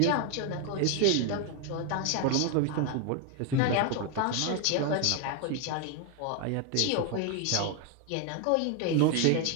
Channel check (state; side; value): different; both; correlation 0.01